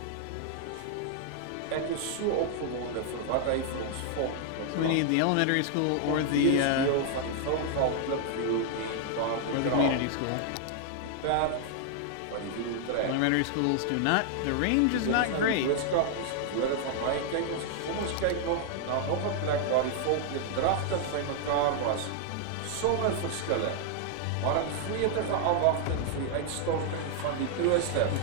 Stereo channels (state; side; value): different; both; correlation 0.00